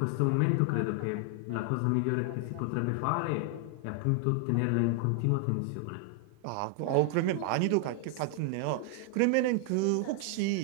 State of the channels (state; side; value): different; both; correlation 0.00